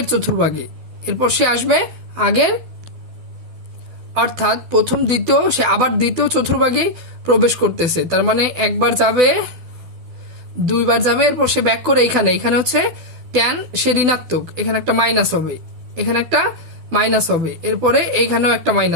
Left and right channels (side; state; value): left; late; 12 ms